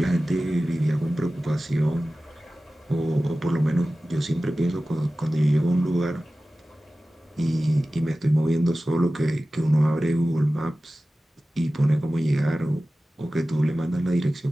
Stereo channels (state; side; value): normal; both; correlation 0.96